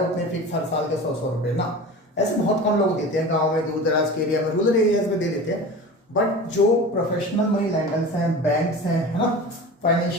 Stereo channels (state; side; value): normal; both; correlation 0.34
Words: उतने फिक्स हर साल के 100 रुपए ना। ऐसे बहुत कम लोग देते हैं, गांव में, दूर दराज के एरिया में, रूरल एरियाज में दे देते हैं। बट जो प्रोफेशनल मनी लेंडर्स हैं, बैंक्स हैं, है ना,